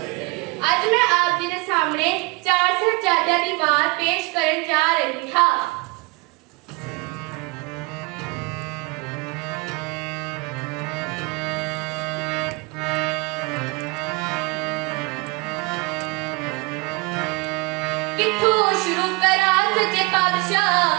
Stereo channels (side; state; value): left; quieter; 27.2 dB